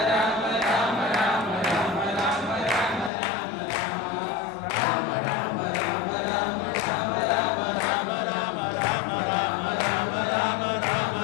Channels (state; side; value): drops out; right; at 3.1 s